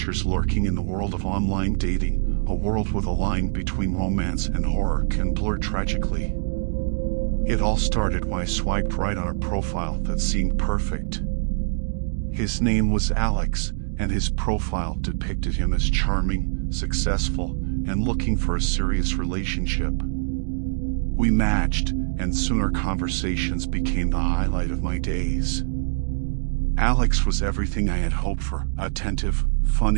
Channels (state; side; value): silent; left; digital silence